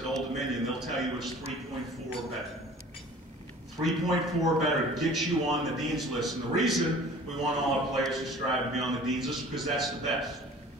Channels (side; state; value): both; normal; correlation 0.46